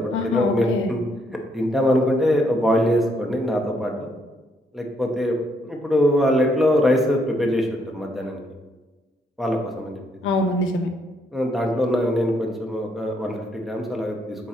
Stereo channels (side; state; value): both; normal; correlation 0.73